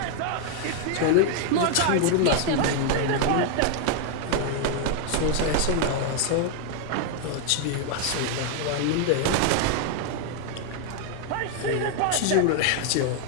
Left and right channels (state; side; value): different; both; correlation 0.00